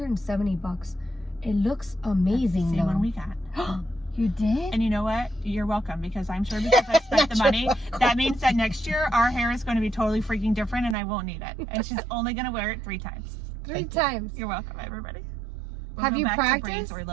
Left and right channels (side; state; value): left; drops out; at 11.0 s